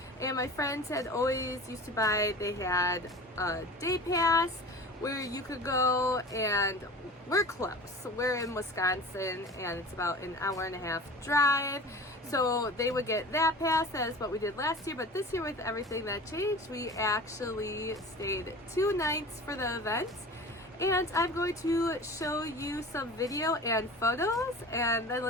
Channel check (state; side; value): normal; both; correlation 0.38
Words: and my friends had always used to buy, they had a day pass where you could go, and we're close. We're in Wisconsin, and it's about an hour and a half drive. So they would get that pass. That is what we did last year. But this year, with everything that changed, we actually stayed 2 nights for the event. And I'm going to show you some video and photos, and then